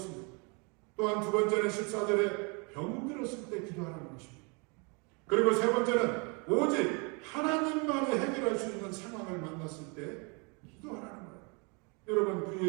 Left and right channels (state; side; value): quieter; left; 32.7 dB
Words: 또한 두 번째는 14절에 병들었을 때 기도하라는 것입니다. 그리고 세 번째는 오직 하나님만이 해결할 수 있는 상황을 만났을 때 기도하라는 거예요. 여러분, 그